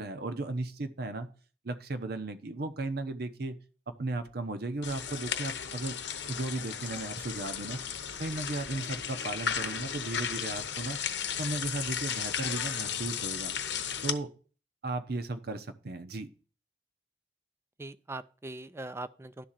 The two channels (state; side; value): normal; both; correlation 0.38